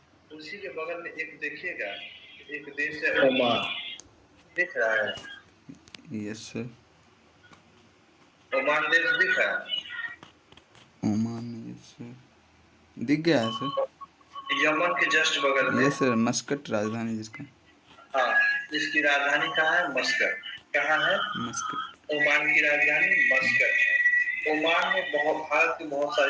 उसी के बगल में एक देखिएगा, एक देश है ओमान। दिख रहा है? Yes sir. ओमान देश दिख रहा है? ओमान, यस सर, दिख गया है सर। यमन के जस्ट बगल में। यस सर, मस्कट राजधानी जिसका। हाँ, इसकी राजधानी कहाँ है? मस्कट। कहाँ है? मस्कट। ओमान की राजधानी मस्कट है। ओमान में भारत के बहुत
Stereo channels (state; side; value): identical; both; correlation 1.00